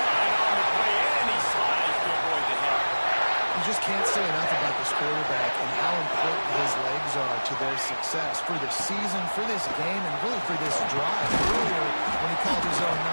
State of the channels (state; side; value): inverted; both; correlation -1.00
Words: on the play, and he slides to avoid the hit. You just can't say enough about this quarterback and how important his legs are to their success for the season, for this game, and really for this drive. Earlier, when he called his own